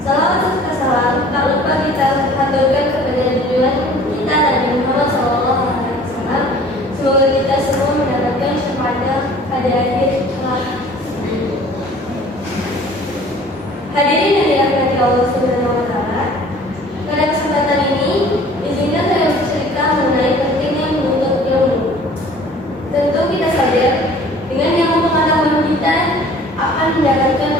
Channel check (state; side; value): normal; both; correlation 0.50